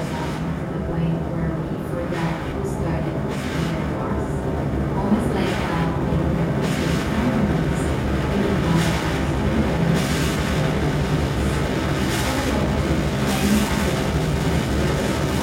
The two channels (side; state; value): both; identical; correlation 1.00